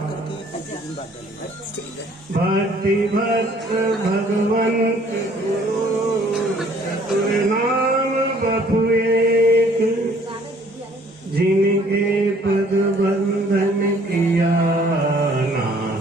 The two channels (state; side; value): normal; both; correlation 0.58